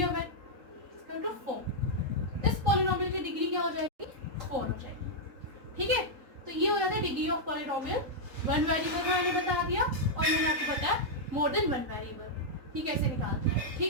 और 1, इसका 2 4। इस पॉलिनोमियल की डिग्री क्या हो जाएगी 4 हो जाएगी। ठीक है, तो ये हो जाता है degree of polynomial. One variable का मैंने बता दिया और मैंने आपको बताया मोर देन वन वेरिएबल ये कैसे निकालते हैं।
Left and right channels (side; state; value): left; late; 3.7 ms